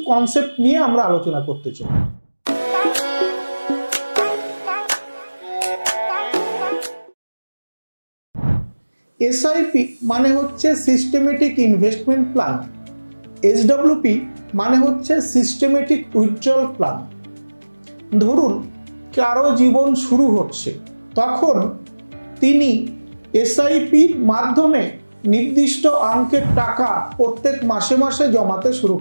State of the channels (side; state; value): both; inverted; correlation -1.00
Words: কনসেপ্ট নিয়ে আমরা আলোচনা করতে চাই। এসআইপি মানে হচ্ছে সিস্টেমেটিক ইনভেস্টমেন্ট প্ল্যান, এসডব্লিউপি মানে হচ্ছে সিস্টেমেটিক উইথড্রল প্ল্যান। ধরুন কারো জীবন শুরু হচ্ছে, তখন তিনি এসআইপির মাধ্যমে নির্দিষ্ট অঙ্কের টাকা প্রত্যেক মাসে মাসে জমাতে শুরু